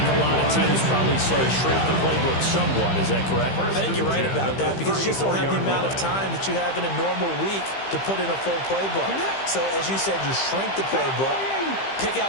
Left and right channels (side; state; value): right; late; 15 ms